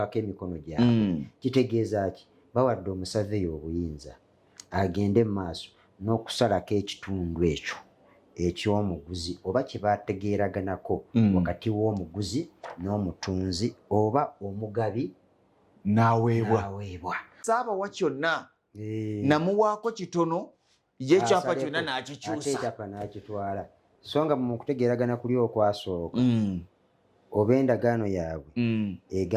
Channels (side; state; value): both; identical; correlation 1.00